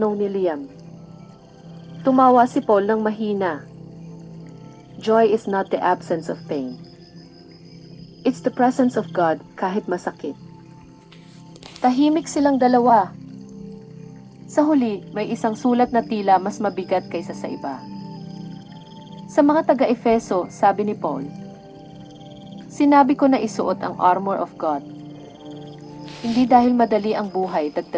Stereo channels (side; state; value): both; identical; correlation 1.00